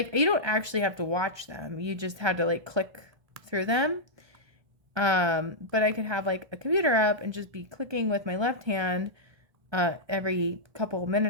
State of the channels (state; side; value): late; left; 1.2 ms